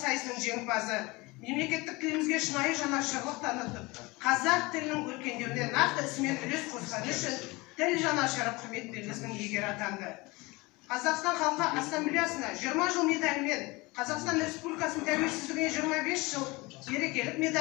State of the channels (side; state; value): right; quieter; 23.6 dB